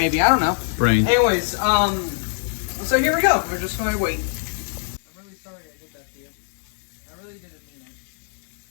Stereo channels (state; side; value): silent; right; digital silence